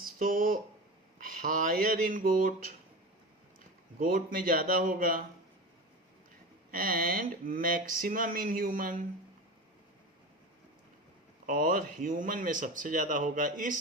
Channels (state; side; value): normal; both; correlation 0.28